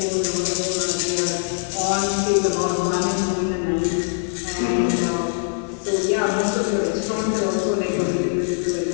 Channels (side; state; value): right; silent; digital silence